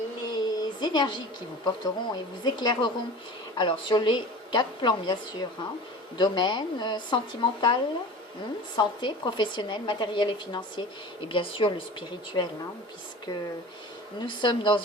les énergies qui vous porteront et vous éclaireront? Alors sur les 4 plans bien sûr, hein. Domaine, sentimental, santé, professionnelle, matériel et financier, et bien sûr le spirituel, hein, puisque nous sommes dans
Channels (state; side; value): normal; both; correlation 0.37